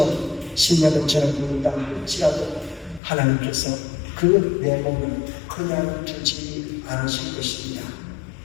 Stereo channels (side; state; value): right; drops out; at 3.0 s